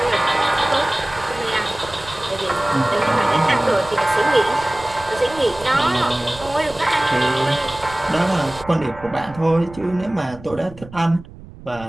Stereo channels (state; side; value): noise; right; rumble, 18 dB below the sound